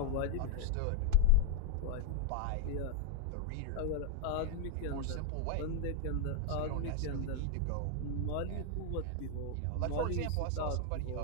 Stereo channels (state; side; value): different; both; correlation 0.00